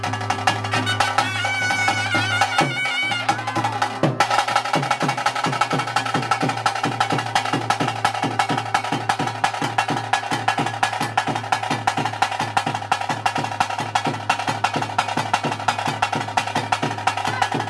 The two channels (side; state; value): both; identical; correlation 1.00